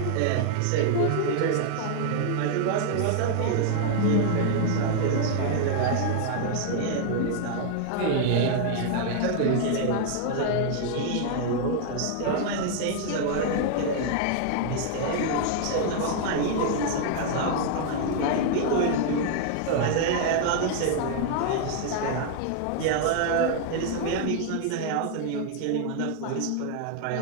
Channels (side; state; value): both; different; correlation 0.00